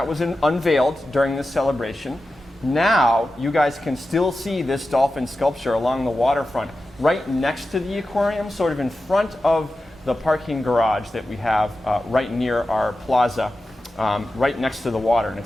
was unveiled during this celebration. Now, you guys can still see this dolphin sculpture along the waterfront, right next to the aquarium, sort of in front of the parking garage that we have right near our plaza, right next to the water. And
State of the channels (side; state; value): both; normal; correlation 0.93